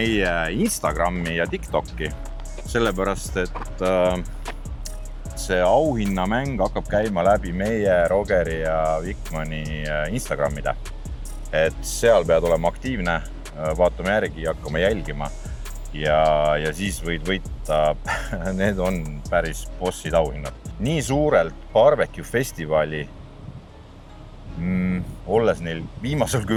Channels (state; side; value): identical; both; correlation 1.00